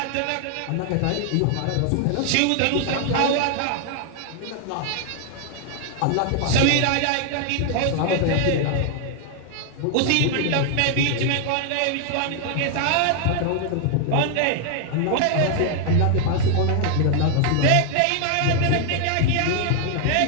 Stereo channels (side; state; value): both; different; correlation 0.00